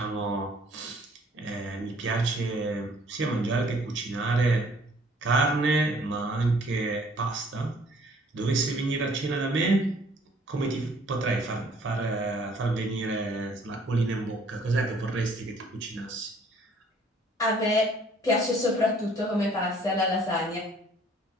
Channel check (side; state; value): both; normal; correlation 0.58